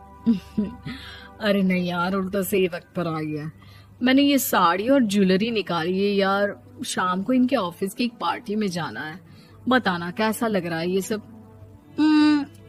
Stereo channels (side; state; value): both; identical; correlation 1.00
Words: अरे नहीं यार, उल्टा सही वक्त पर आई है। मैंने ये साड़ी और ज्वेलरी निकाली है यार, शाम को इनके ऑफिस की एक पार्टी में जाना है। बताना कैसा लग रहा है ये सब?